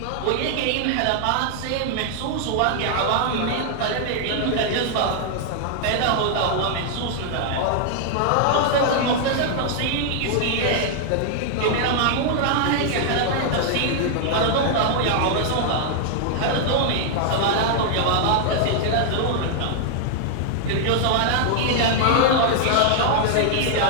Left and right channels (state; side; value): different; both; correlation -0.01